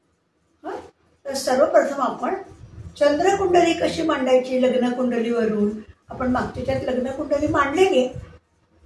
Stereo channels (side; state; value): both; identical; correlation 1.00